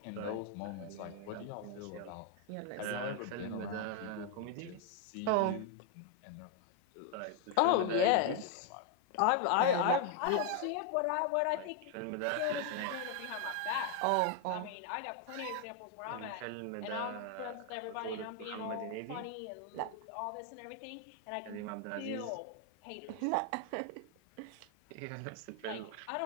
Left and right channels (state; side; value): different; both; correlation 0.00